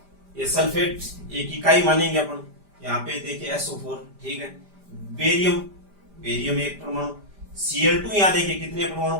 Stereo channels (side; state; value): left; late; 5.0 ms